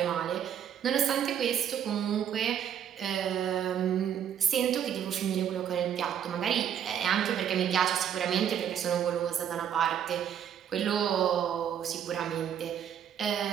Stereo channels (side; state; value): left; quieter; 9.1 dB